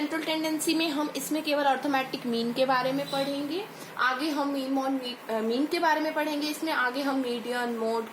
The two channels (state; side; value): identical; both; correlation 1.00